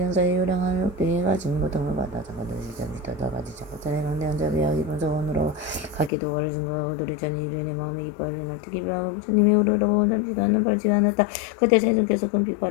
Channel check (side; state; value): right; drops out; at 6.1 s